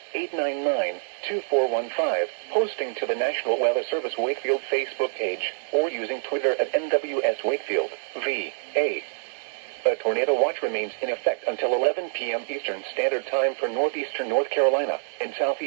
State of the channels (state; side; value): silent; left; digital silence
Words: 757-899-2415, posting to the National Weather Service Wakefield Facebook page, or using Twitter at NWS Wakefield, VA. A tornado watch remains in effect until 11 p.m. Eastern Standard Time for northeastern North Carolina and